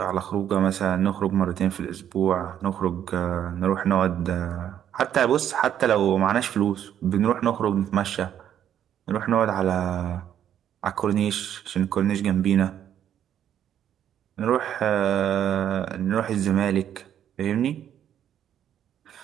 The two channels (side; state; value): left; quieter; 10.0 dB